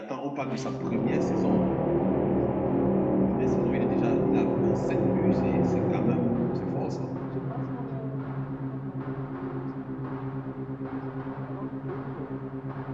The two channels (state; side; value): identical; both; correlation 1.00